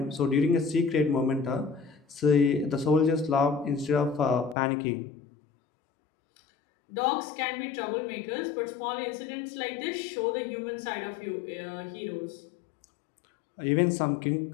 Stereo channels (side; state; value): right; drops out; at 4.5 s